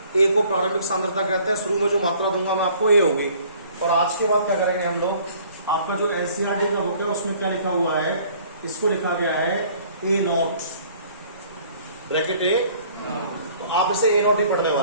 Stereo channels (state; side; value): inverted; both; correlation -0.55